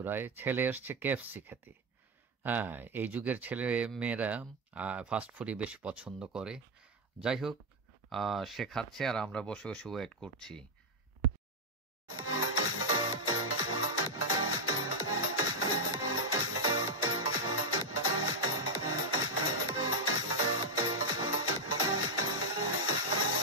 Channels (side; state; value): both; normal; correlation 0.01